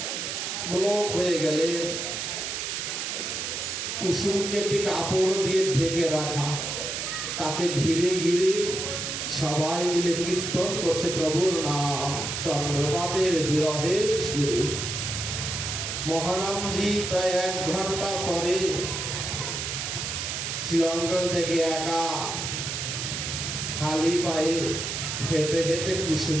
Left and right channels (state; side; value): noise; right; hiss, 3 dB below the sound